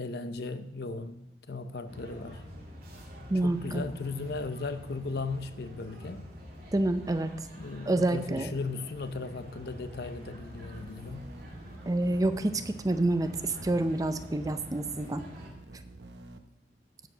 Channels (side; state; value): both; normal; correlation 0.79